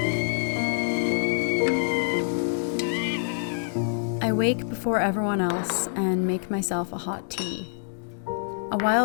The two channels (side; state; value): right; silent; digital silence